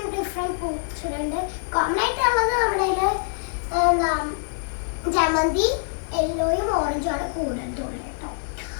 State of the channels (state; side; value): silent; right; digital silence